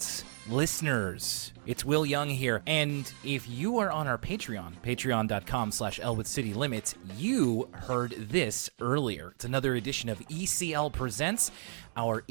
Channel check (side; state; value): left; silent; digital silence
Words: listeners. It's Will Young here, and if you are on our Patreon, patreon.com/Elwood City Limits, you heard this earlier. It's another edition of ECL Presents, our